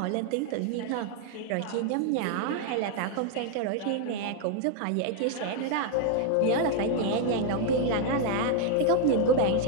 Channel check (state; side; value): different; both; correlation 0.00